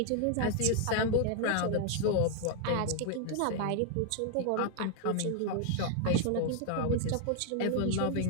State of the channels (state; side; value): different; both; correlation 0.00